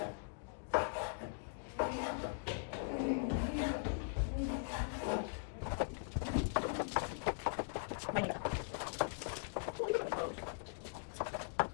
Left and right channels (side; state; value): right; silent; digital silence